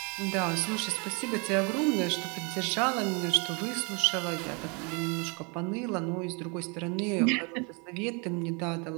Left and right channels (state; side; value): quieter; left; 32.5 dB